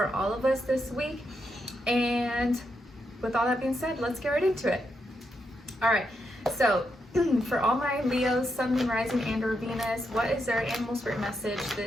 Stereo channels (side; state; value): both; normal; correlation 0.82